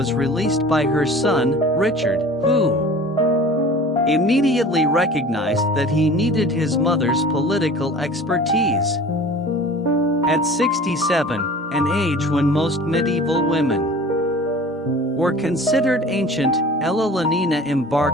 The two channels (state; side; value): normal; both; correlation 0.43